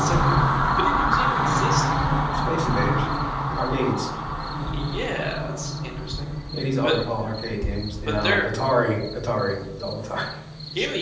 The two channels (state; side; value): identical; both; correlation 1.00